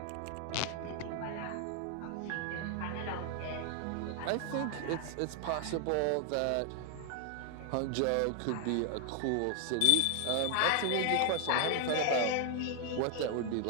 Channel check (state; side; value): different; both; correlation 0.00